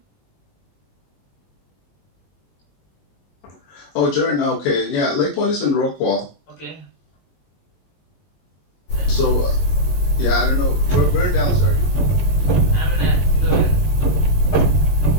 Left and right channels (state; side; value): late; right; 21 ms